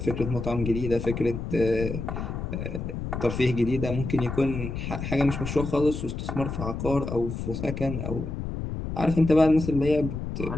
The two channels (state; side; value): noise; left; rumble, 5 dB below the sound